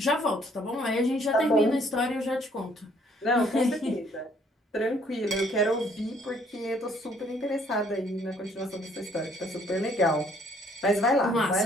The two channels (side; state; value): both; normal; correlation 0.63